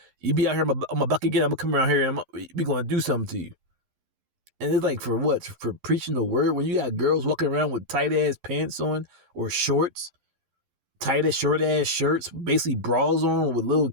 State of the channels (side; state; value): left; late; 11 ms